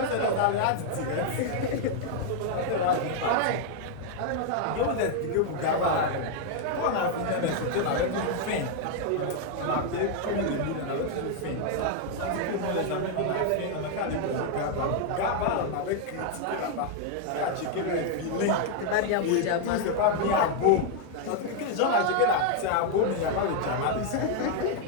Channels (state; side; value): different; both; correlation 0.00